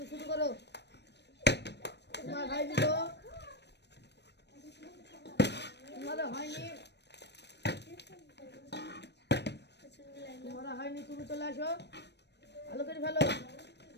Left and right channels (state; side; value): late; right; 0.50 ms